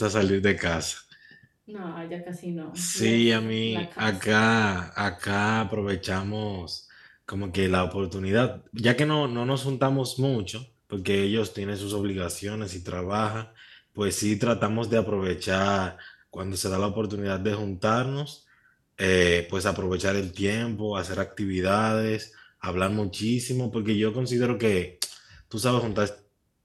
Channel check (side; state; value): both; identical; correlation 1.00